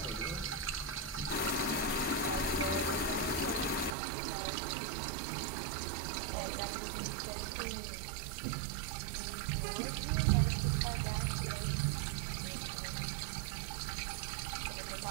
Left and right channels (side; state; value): left; drops out; at 4.0 s